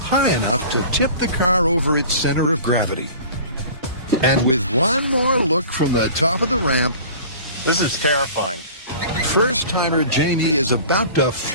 enough to tip the car over its center of gravity. And with one more look from the top of the ramp, This is terrifying. first-timer Jamie is about to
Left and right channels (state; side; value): inverted; both; correlation -0.42